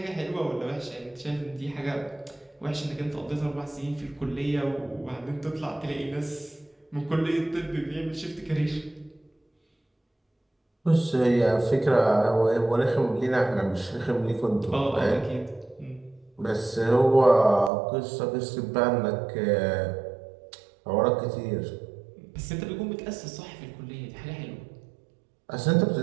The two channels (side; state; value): left; drops out; at 17.7 s